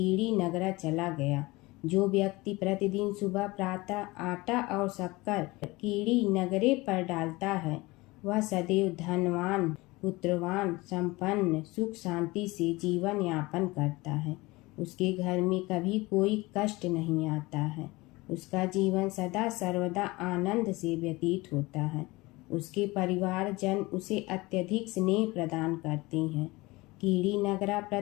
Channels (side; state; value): right; quieter; 22.0 dB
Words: नगरा चला गया। जो व्यक्ति प्रतिदिन सुबह प्रातः आटा और शक्कर कीड़ी नगरे पर डालता है, वह सदैव धनवान, पुत्रवान, संपन्न, सुख शांति से जीवन यापन करता है। उसके घर में कभी कोई कष्ट नहीं आता है। उसका जीवन सदा सर्वदा आनंद से व्यतीत होता है। उसके परिवारजन उसे अत्यधिक स्नेह प्रदान करते हैं। कीड़ी नगरा